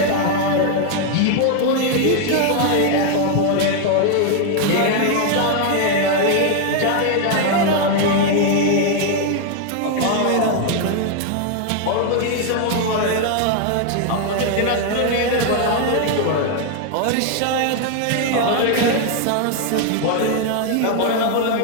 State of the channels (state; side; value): different; both; correlation 0.00